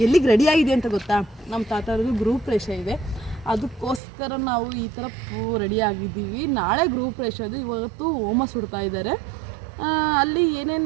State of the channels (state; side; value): drops out; left; at 4.0 s